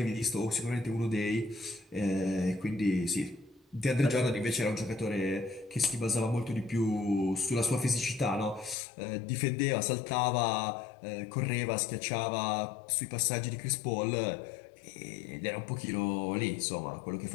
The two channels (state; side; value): drops out; right; at 8.8 s